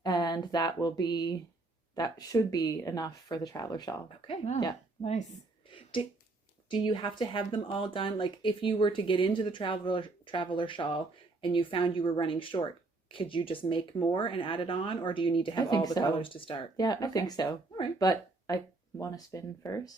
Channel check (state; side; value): quieter; left; 3.3 dB